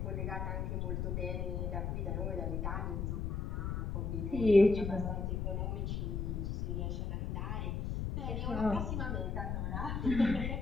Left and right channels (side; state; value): left; noise; rumble, 1 dB below the sound